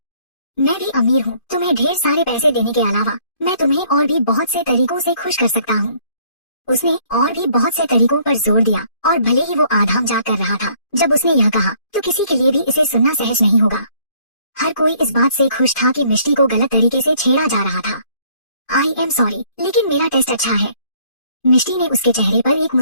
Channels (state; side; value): late; right; 2.5 ms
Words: मैं भी अमीर हूँ, तुम्हें ढेर सारे पैसे देने के अलावा मैं तुम्हें और भी बहुत से तरीकों से खुश कर सकता हूँ। उसने और भी बहुत से तरीकों पर जोर दिया, और भले ही वो आधाम जा कर रहा था जब उसने यह कहा, तो किसी के लिए भी इसे सुनना सहज नहीं होगा। हर कोई इस बात से खुश था कि मिष्टी को गलत तरीके से छेड़ा जा रहा था। आई एम सॉरी, लेकिन मेरा टेस्ट अच्छा है। मिष्टी ने उसके चेहरे पर एक